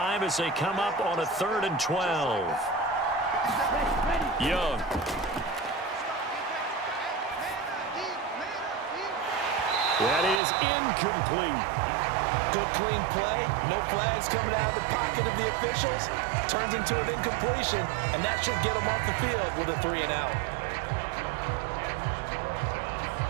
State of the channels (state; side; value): drops out; left; at 10.4 s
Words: as they come up on a 3rd and 12. Young. That is incomplete. Good clean play. No flags coming out of the pocket of the officials. Turns into an incompletion, and that should get them off the field with a 3 and out.